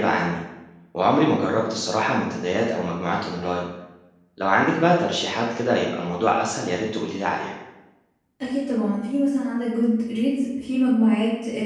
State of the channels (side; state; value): both; identical; correlation 1.00